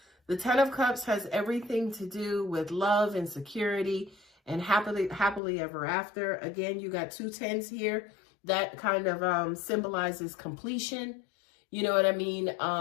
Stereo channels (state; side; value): drops out; right; at 5.4 s